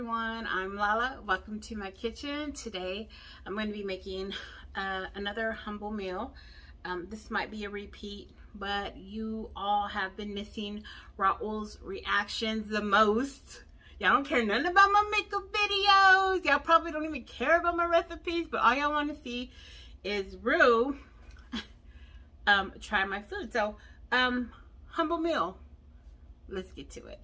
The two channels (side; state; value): both; identical; correlation 1.00